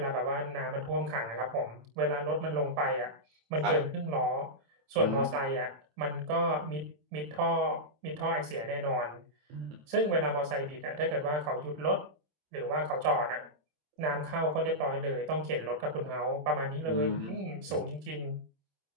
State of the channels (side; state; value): left; late; 27 ms